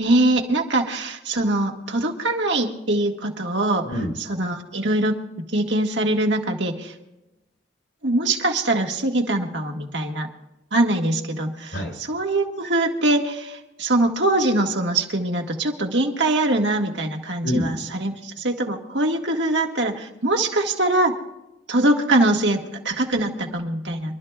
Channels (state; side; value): normal; both; correlation 0.36